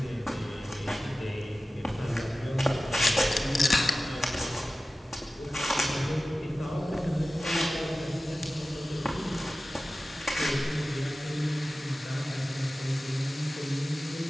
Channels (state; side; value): normal; both; correlation 0.96